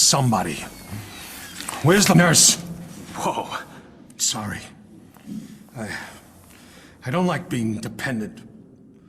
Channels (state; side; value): identical; both; correlation 1.00